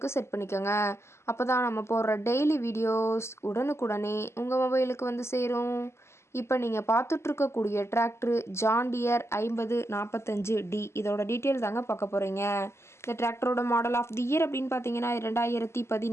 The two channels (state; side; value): late; right; 0.13 ms